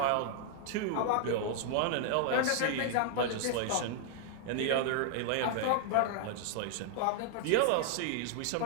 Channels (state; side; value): different; both; correlation -0.01